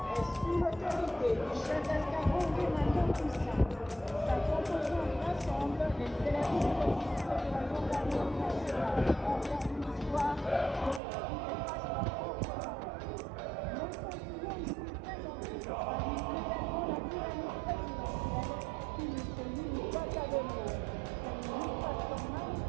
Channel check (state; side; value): drops out; left; at 11.0 s